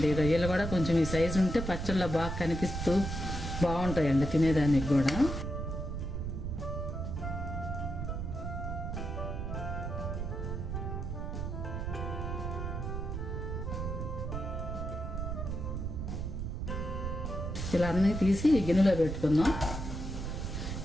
రొయ్యలు కూడా కొంచెం ఈ సైజు ఉంటే పచ్చళ్ళలో బాగా కనిపిస్తూ బాగుంటాయండి తినేదానికి కూడా. ఇలా అన్నీ తీసి గిన్నెలో పెట్టుకుందాం.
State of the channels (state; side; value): noise; right; rumble, 4 dB below the sound